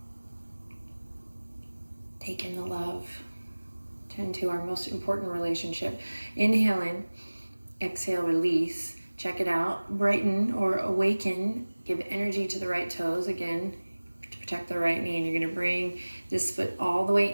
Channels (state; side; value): inverted; both; correlation -1.00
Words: Take in the love. Tend to our most important relationship. Inhale in, exhale, release. Check it out. Brighten or awaken. Give energy to the right toes. Again, to protect the right knee. And you're going to bring this foot all the